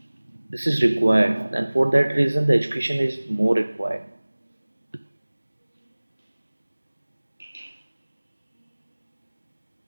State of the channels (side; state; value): both; inverted; correlation -1.00